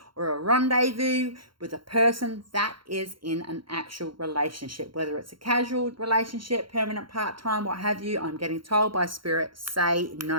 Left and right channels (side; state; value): left; late; 0.73 ms